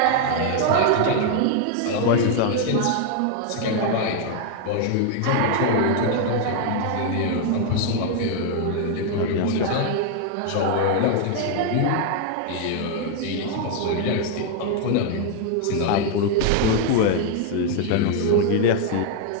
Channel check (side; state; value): both; different; correlation 0.00